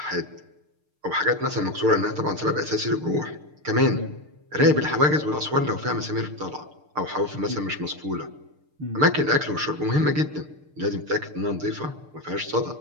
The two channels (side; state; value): left; late; 6.7 ms